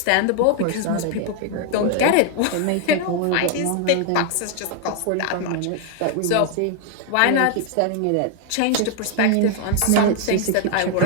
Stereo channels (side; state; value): both; different; correlation 0.00